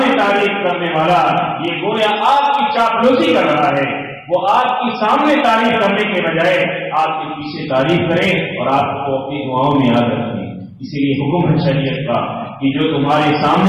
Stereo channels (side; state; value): both; identical; correlation 1.00